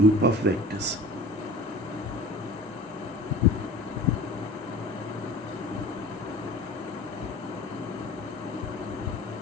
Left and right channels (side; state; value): both; normal; correlation 0.41